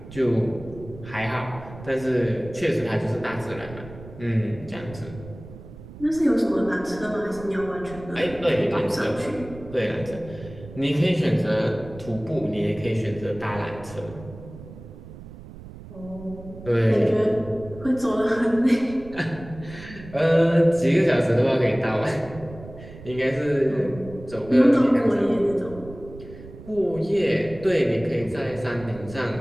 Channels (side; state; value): right; noise; rumble, 16 dB below the sound